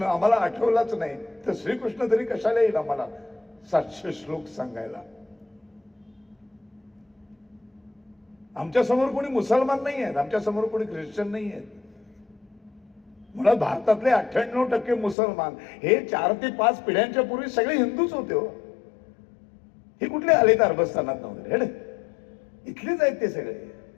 आम्हाला आठवलाच नाही तर श्रीकृष्ण तरी कशाला येईल आम्हाला 700 श्लोक सांगायला? आमच्या समोर कोणी मुसलमान नाही आहेत, आमच्या समोर कोणी ख्रिश्चन नाही आहेत. मुळात भारतातले 98% मुसलमान हे 4 ते 5 पिढ्यांच्या पूर्वी सगळे हिंदूच होते. हो, हे कुठले आले तर अरबस्थानात वगैरे, इथलेच आहेत ते सगळे.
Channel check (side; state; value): right; drops out; at 15.2 s